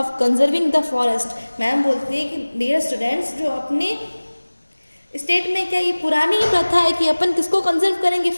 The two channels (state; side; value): inverted; both; correlation -1.00